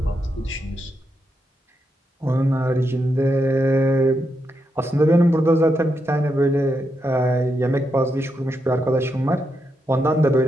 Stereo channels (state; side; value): normal; both; correlation 0.83